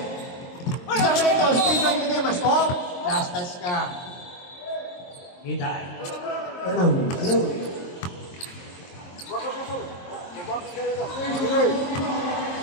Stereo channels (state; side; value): late; right; 23 ms